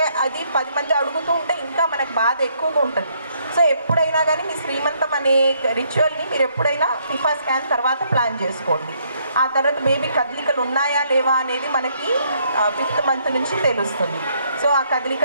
అది 10 మంది అడుగుతూ ఉంటే ఇంకా మనకు బాధ ఎక్కువగా ఉంటుంది. సో ఎప్పుడైనా కానీ మీ శ్రీమంతం అనే రిచువల్ని మీరు ఎప్పుడైనా టిఫా స్కాన్ తర్వాత ప్లాన్ చేసుకోండి. ఆ తర్వాత బేబీ కదలికలు ఉన్నాయా లేవా అనేది మనకి 5th మంత్ నుంచి తెలుస్తుంది. సో ఆ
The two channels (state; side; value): inverted; both; correlation -0.70